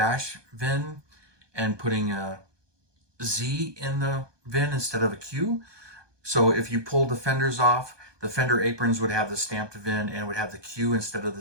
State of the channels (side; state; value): left; late; 1.2 ms